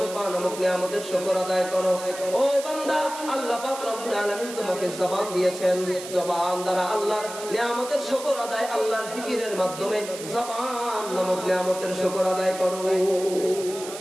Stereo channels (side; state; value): right; noise; hiss, 12 dB below the sound